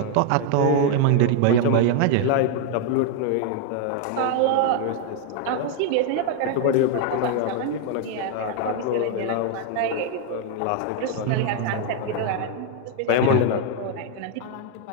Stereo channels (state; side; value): different; both; correlation 0.00